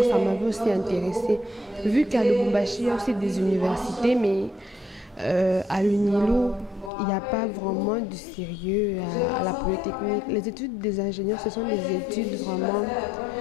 ça m'avait aussi intéressée. Vu qu'à Lubumbashi, il y a aussi des universités, mais à l'UNILO, il n'y a pas vraiment du sérieux à la polytechnique. Les études des ingénieurs, ce sont des études vraiment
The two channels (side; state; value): right; drops out; at 6.9 s